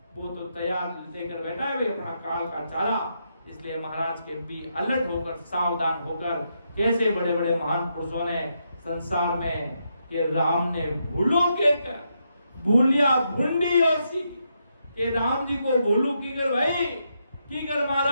वो तो तैयार लेकर बैठा है अपना काल का चारा। इसलिए महाराज के भी अलर्ट होकर सावधान होकर, कैसे बड़े बड़े महान पुरुषों ने संसार में कि राम ने भूलो के कर भूलिया भूंडी और सी कि राम जी को भूलू की कर भाई की कर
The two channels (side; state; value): both; inverted; correlation -0.81